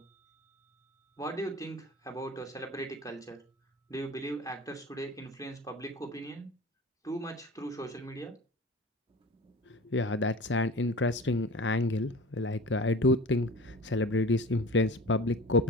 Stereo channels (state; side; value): normal; both; correlation 0.37